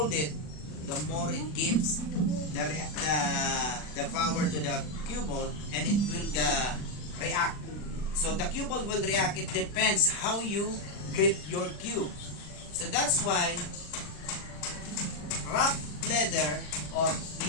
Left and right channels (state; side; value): late; right; 39 ms